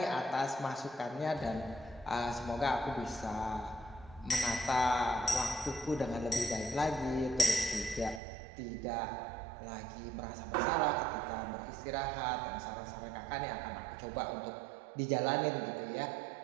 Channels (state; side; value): drops out; left; at 8.2 s